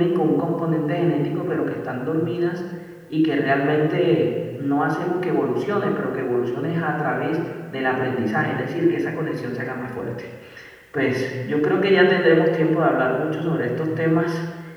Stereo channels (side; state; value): both; identical; correlation 1.00